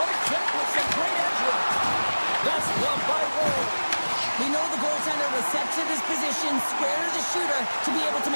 We know the goaltender was set to this position, square to the shooter, to be able to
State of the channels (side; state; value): both; inverted; correlation -1.00